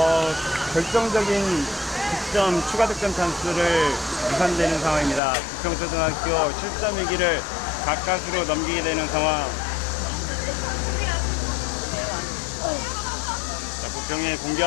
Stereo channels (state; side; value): drops out; right; at 5.2 s